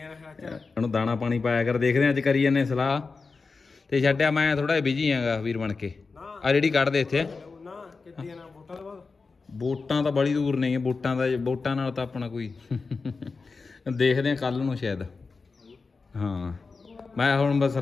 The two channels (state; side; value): quieter; right; 4.4 dB